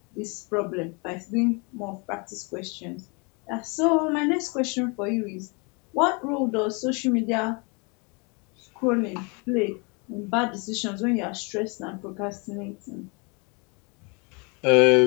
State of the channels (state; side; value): quieter; right; 31.9 dB